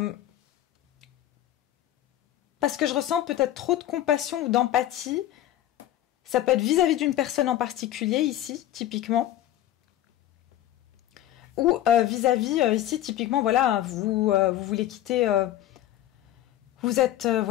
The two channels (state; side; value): quieter; right; 13.1 dB